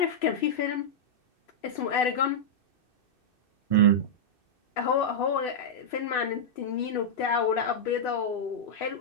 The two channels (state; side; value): late; right; 2.6 ms